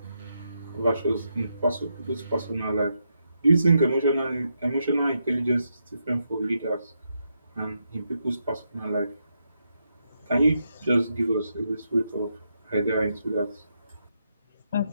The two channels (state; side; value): inverted; both; correlation -0.82